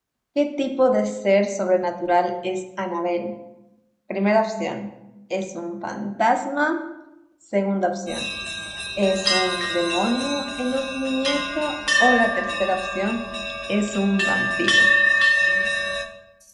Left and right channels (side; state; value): both; identical; correlation 1.00